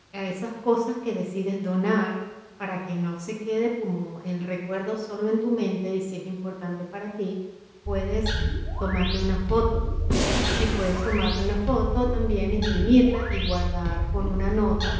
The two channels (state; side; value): identical; both; correlation 1.00